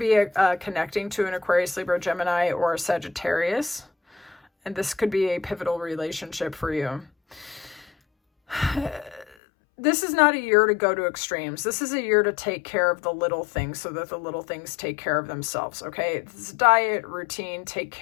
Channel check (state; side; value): drops out; right; at 9.2 s